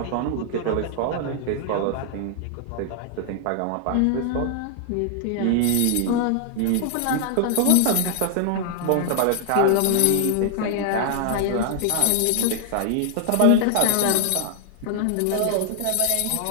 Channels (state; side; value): different; both; correlation 0.00